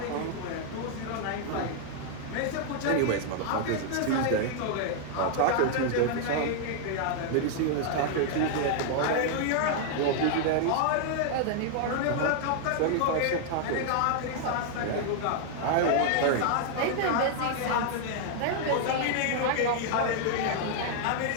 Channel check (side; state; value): both; different; correlation 0.00